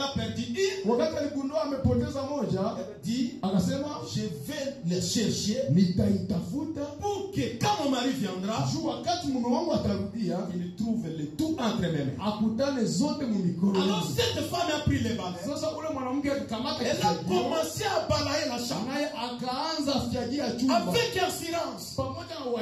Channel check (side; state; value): both; identical; correlation 1.00